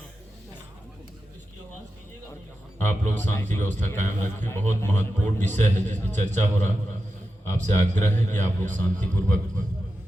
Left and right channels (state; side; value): normal; both; correlation 0.91